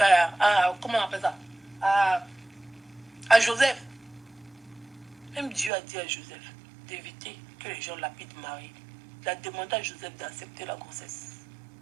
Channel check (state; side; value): drops out; left; at 5.7 s